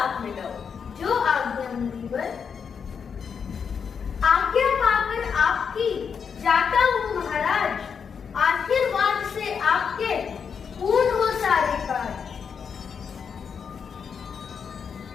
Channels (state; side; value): quieter; right; 6.6 dB